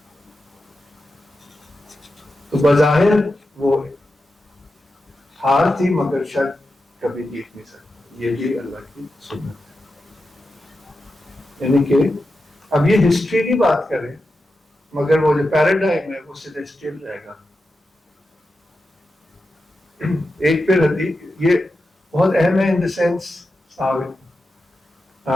تو بظاہر وہ ہار تھی مگر شک کبھی جیت نہیں سکتا. یہ بھی اللہ کی سنت ہے. یعنی کہ اب یہ ہسٹری کی بات کریں مگر وہ جو پیراڈائم ہے وہ سیلیسٹیل رہے گا. ایک پھر حدیث یہ بہت اہم ہے ان دا سینس،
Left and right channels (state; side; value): normal; both; correlation 0.90